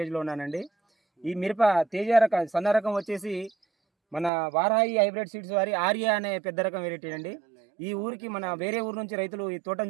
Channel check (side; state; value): left; drops out; at 4.3 s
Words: ఉన్నానండి. ఈ మిరప తేజ రకం సన్న రకం వచ్చేసి మన వారాహి హైబ్రిడ్ సీడ్స్ వారి ఆర్య అనే పెద్ద రకం వెరైటీ అండి. ఈ ఊరికి మన వేరే ఊరు నుంచి రైతులు ఈ